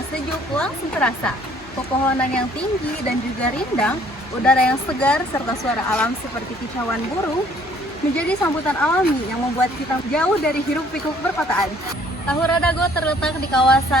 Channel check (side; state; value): both; normal; correlation 0.59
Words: sejuk langsung terasa. Pepohonan yang tinggi dan juga rindang, udara yang segar, serta suara alam seperti kicauan burung menjadi sambutan alami yang membuat kita jauh dari hiruk-pikuk perkotaan. Tahura Dago terletak di